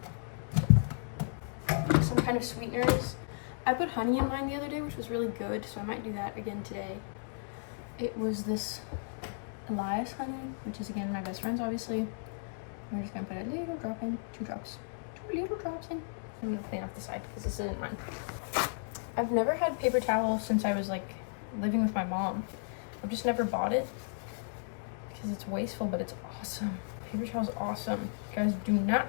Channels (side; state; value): right; silent; digital silence